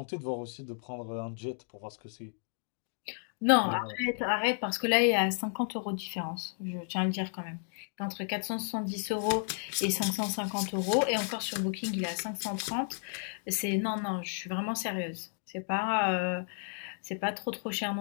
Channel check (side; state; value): right; silent; 56 dB below the other